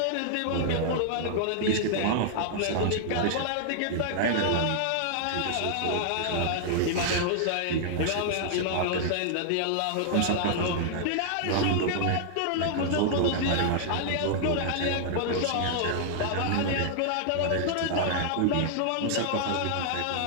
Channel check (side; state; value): both; different; correlation -0.01